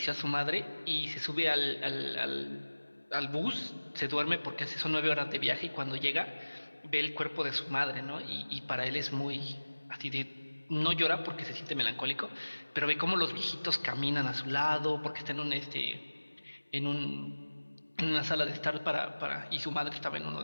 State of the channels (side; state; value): both; inverted; correlation -1.00